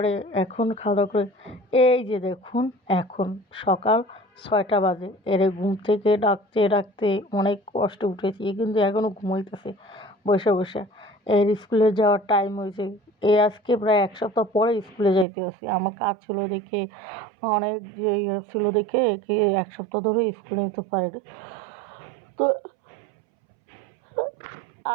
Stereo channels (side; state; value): left; drops out; at 15.2 s